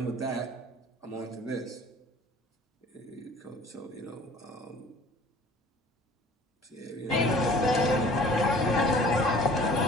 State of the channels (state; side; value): normal; both; correlation 0.49